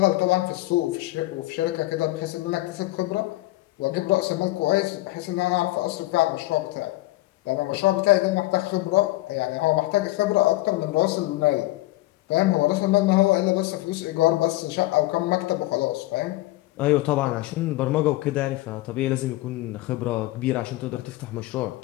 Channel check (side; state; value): right; quieter; 18.5 dB